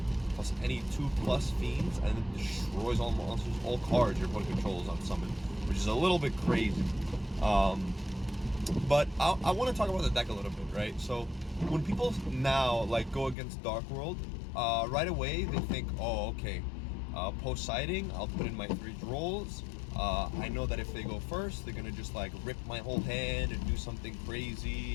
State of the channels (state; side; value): drops out; right; at 13.4 s